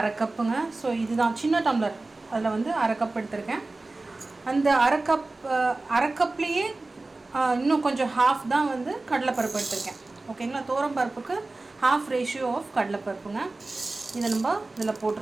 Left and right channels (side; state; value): left; quieter; 3.2 dB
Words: கப்புங்க. ஸோ இதுதான் சின்ன டம்ளர், அதில் வந்து அரை கப் எடுத்திருக்கேன். அந்த அரை கப்லேயே இன்னும் கொஞ்சம் ஹாஃப் தான் வந்து கடலைப்பருப்பு எடுத்திருக்கேன். ஓகேங்களா, தோரம் பருப்புக்கு ஹாஃப் ரேஷியோ ஆஃப் கடலைப்பருப்புங்க. இதை நம்ம இதில்